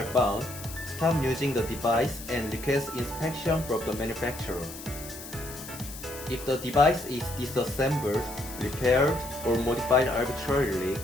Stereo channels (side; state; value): left; noise; hiss, 13 dB below the sound